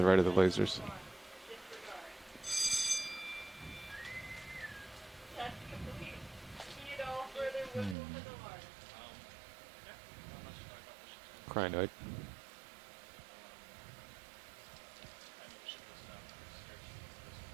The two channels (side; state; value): left; drops out; at 8.0 s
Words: right of the lasers. Crinoid.